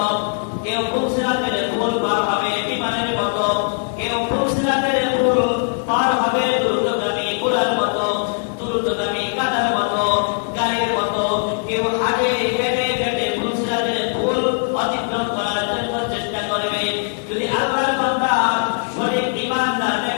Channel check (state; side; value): silent; right; digital silence